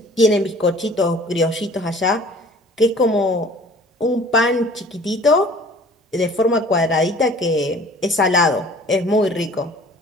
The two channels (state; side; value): normal; both; correlation 0.49